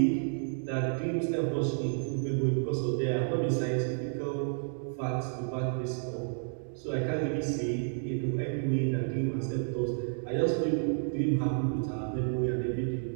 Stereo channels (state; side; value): silent; left; digital silence